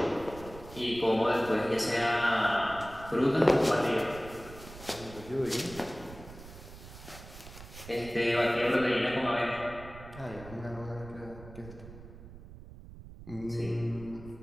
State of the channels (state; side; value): noise; right; rumble, 16 dB below the sound